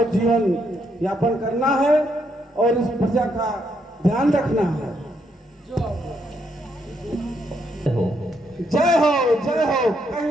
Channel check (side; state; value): both; normal; correlation 0.76